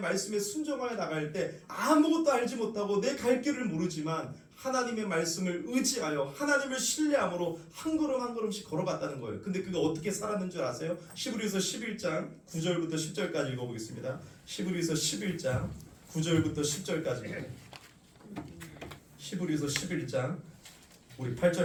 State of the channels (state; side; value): identical; both; correlation 1.00